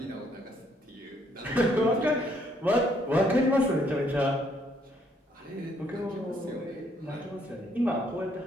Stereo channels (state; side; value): normal; both; correlation 0.69